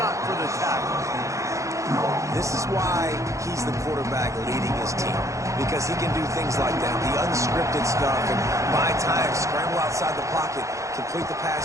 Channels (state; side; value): late; left; 0.15 ms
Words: up for the tackle. This is why he's the quarterback leading his team, because he can do things like that, the unscripted stuff, and buy time, scramble outside the pocket, complete the pass